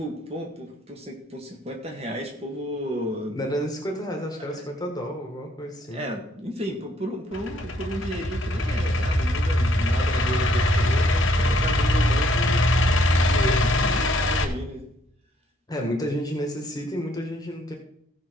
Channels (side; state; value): both; normal; correlation 0.67